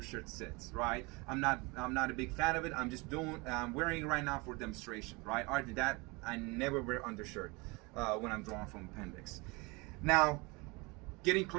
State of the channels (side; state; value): left; quieter; 26.4 dB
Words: sits, right? I'm not a big fan of it. I'm wearing it right now for demonstration, right? Other than that, I never wear undershirt when I'm drawing from appendix. Now, getting